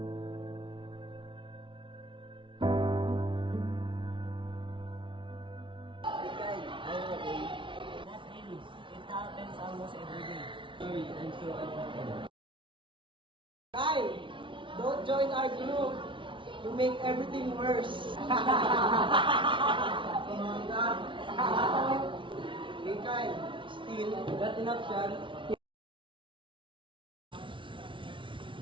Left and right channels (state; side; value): late; left; 0.24 ms